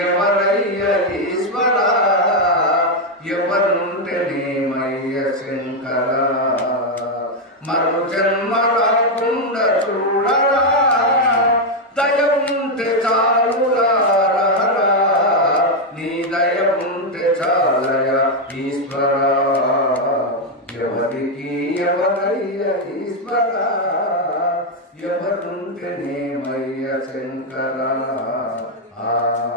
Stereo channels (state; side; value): normal; both; correlation 0.03